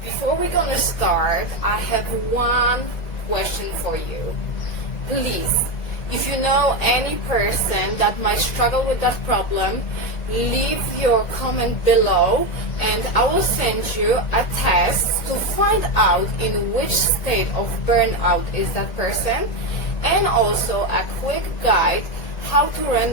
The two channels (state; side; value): late; right; 1.8 ms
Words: Before we're gonna start, I have one question for you. Please, if you know any person that might struggle with that problem, leave your comment below and I will send you a test to find out in which state of burnout is that person, and also a quick guide how to